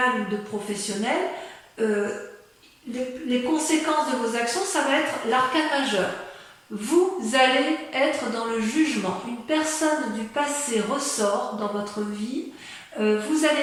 ou de professionnel, les conséquences de vos actions, ça va être l'arcane majeur. Vous allez être dans le jugement. Une personne du passé ressort dans votre vie. Vous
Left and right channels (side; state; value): both; identical; correlation 1.00